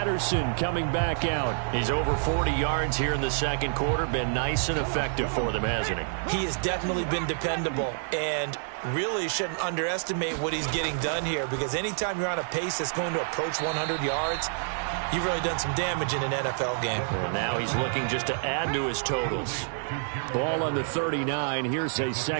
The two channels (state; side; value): silent; left; 59 dB below the other